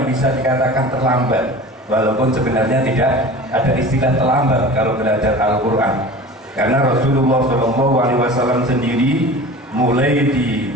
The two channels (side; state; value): both; normal; correlation 0.37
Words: bisa dikatakan terlambat. Walaupun sebenarnya tidak ada istilah terlambat kalau belajar Al-Quran, karena Rasulullah SAW sendiri mulai